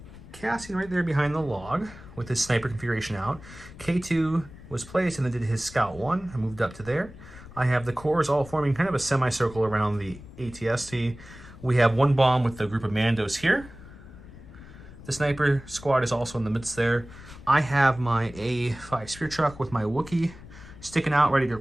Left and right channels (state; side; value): noise; left; rumble, 17 dB below the sound